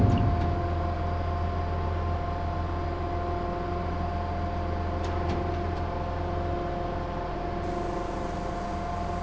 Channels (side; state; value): both; identical; correlation 1.00